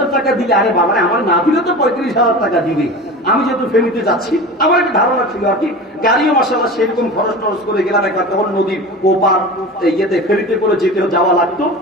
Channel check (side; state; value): both; normal; correlation 0.32